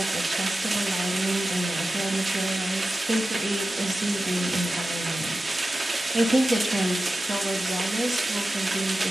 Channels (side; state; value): both; normal; correlation 0.94